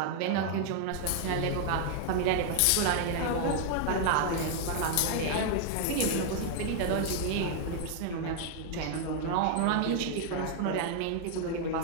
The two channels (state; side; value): different; both; correlation 0.00